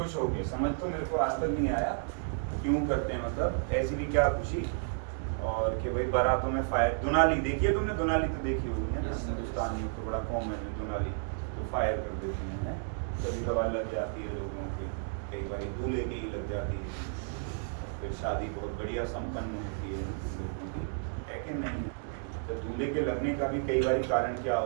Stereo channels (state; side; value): silent; left; digital silence